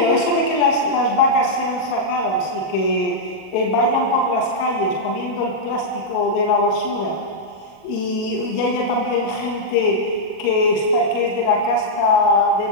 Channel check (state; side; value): late; right; 37 ms